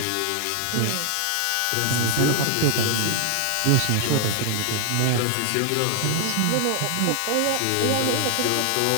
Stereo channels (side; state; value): both; different; correlation 0.00